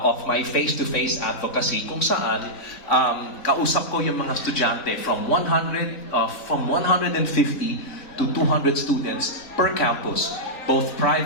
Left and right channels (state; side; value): late; right; 3.9 ms